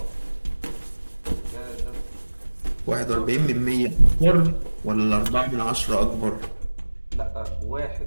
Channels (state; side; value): inverted; both; correlation -1.00